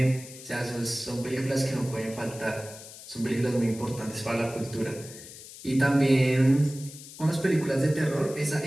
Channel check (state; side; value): noise; left; hiss, 16 dB below the sound